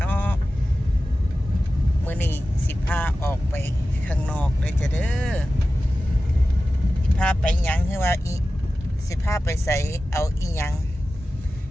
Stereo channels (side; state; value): both; normal; correlation 0.95